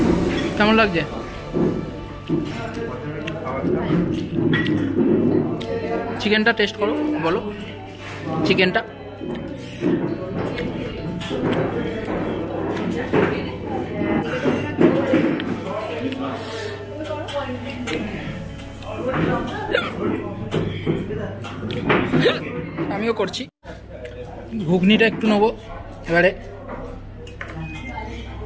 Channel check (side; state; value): both; identical; correlation 1.00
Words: কেমন লাগছে? চিকেনটা টেস্ট করো, বলো চিকেনটা। আমিও করছি। ঘুগনিটা একটু নেবো এবারে।